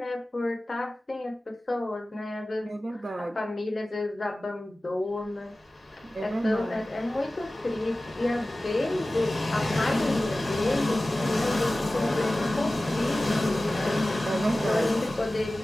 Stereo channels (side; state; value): both; normal; correlation 0.97